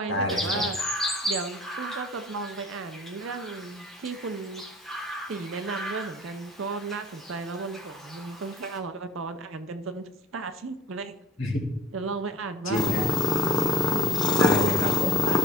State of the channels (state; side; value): normal; both; correlation 0.48